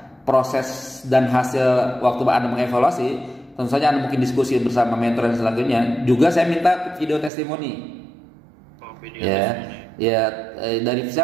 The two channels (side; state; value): left; drops out; at 7.3 s